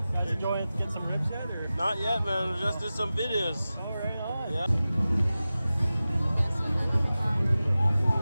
Guys enjoying getting some ribs yet? Or? Not yet, man. We just did some videos. Oh, right on. Yeah.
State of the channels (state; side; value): inverted; both; correlation -0.96